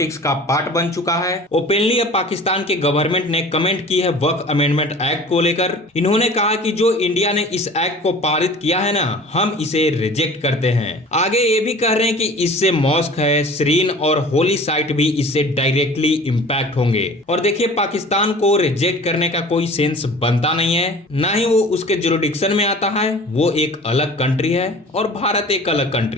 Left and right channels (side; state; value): both; normal; correlation 0.43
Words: का पार्ट बन चुका है। ओपनली अब पाकिस्तान के गवर्नमेंट ने कमेंट की है वक्फ अमेंडमेंट एक्ट को लेकर। इन्होंने कहा कि जो इंडिया ने इस एक्ट को पारित किया है ना, हम इसे रिजेक्ट करते हैं। आगे ये भी कह रहे हैं कि इससे मॉस्क है, श्रीन और होली साइट भी इससे डायरेक्टली इंपैक्ट होंगे। और देखिए, पाकिस्तान को रिजेक्ट करने का कोई सेंस बनता नहीं है, ना ही वो उसके जुरिडिक्शन में आता है। वो एक अलग कंट्री है और भारत एक अलग